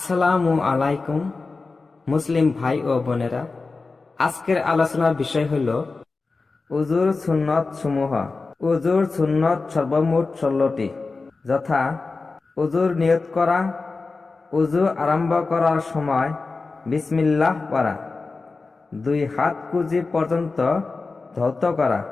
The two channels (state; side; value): quieter; right; 3.9 dB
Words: আলাইকুম মুসলিম ভাই ও বোনেরা, আজকের আলোচনার বিষয় হল উজুর সুন্নত সমূহ। উজুর সুন্নত সর্বমোট 16টি, যথা উজুর নিয়ত করা, উজু আরম্ভ করার সময় বিসমিল্লাহ পড়া, 2 হাত কুজি পর্যন্ত ধৌত করা,